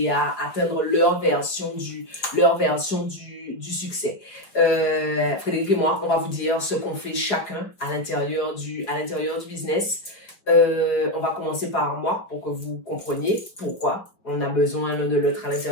à atteindre leur version du succès. Frédéric et moi, on va vous dire ce qu'on fait chacun à l'intérieur du business. On va commencer par moi pour que vous compreniez pourquoi on a besoin l'un de l'autre à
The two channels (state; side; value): late; right; 4.8 ms